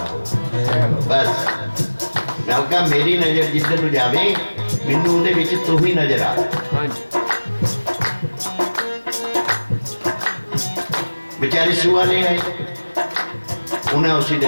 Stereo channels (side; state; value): both; inverted; correlation -1.00